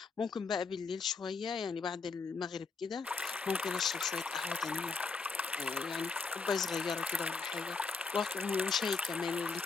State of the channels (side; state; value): right; quieter; 4.7 dB